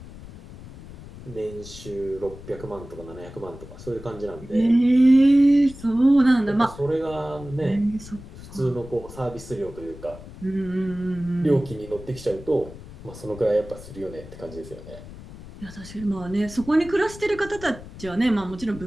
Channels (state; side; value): noise; left; rumble, 16 dB below the sound